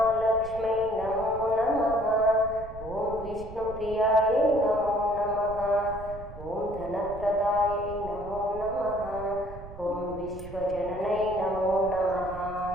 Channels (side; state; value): right; noise; rumble, 14 dB below the sound